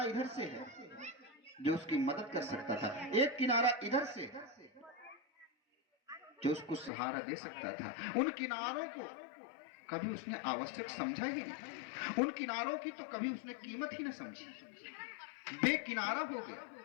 इधर से है जो उसकी मदद कर सकता था, एक किनारा इधर से जो उसको सहारा दे सकता था। उन किनारों को कभी उसने आवश्यक समझा ही नहीं। उन किनारों की तो कभी उसने कीमत ही ना समझी, बेकिनारा हो गया।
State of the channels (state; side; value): drops out; right; at 6.9 s